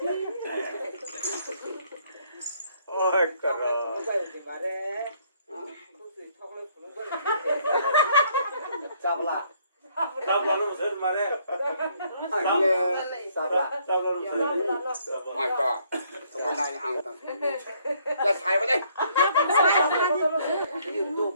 Ôi caro. Sabla. Sabla nó sớm mà đấy. Sabla. Sabla nó sớm. My God. Hôm nay ăn tao. Let's have it.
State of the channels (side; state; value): both; inverted; correlation -0.66